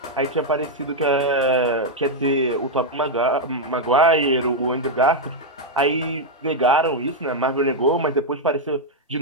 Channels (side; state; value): both; normal; correlation 0.00